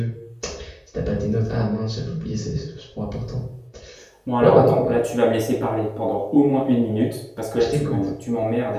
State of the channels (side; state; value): both; identical; correlation 1.00